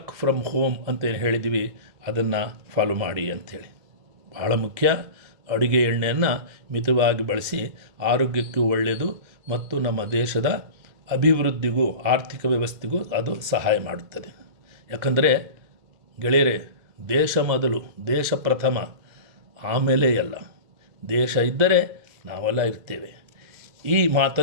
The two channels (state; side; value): late; left; 2.0 ms